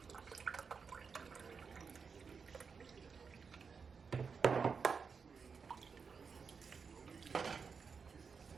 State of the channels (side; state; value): left; quieter; 5.6 dB